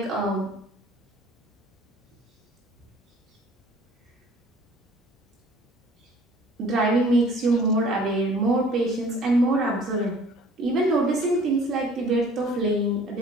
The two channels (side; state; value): both; normal; correlation 0.52